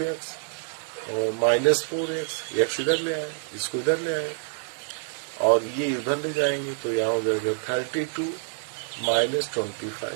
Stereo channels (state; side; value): silent; left; digital silence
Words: और माइनस 4x, x इधर ले आए, इसको इधर ले आए, और ये उधर ले जाएंगे, तो यहाँ हो जाएगा 32 माइनस